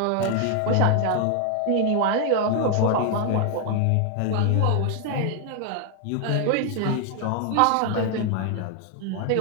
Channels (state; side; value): different; both; correlation 0.00